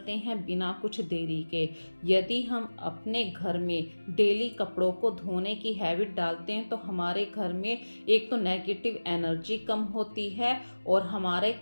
हैं बिना कुछ देरी के। यदि हम अपने घर में डेली कपड़ों को धोने की हैबिट डालते हैं तो हमारे घर में एक तो नेगेटिव एनर्जी कम होती है और हमारे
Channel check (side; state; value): both; inverted; correlation -1.00